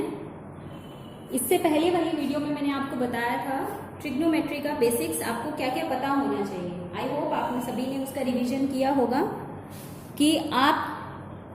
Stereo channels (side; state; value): both; identical; correlation 1.00